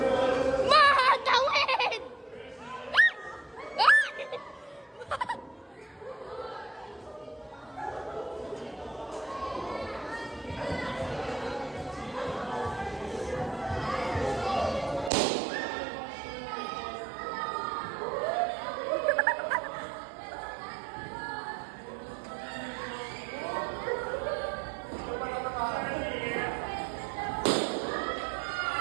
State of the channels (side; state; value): left; drops out; at 15.1 s